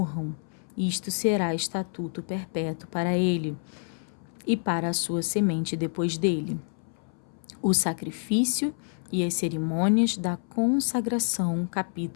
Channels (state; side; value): silent; right; 59 dB below the other